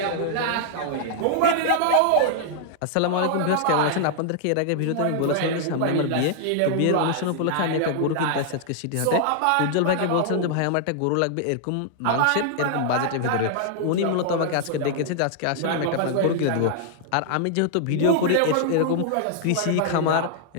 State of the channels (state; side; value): different; both; correlation -0.01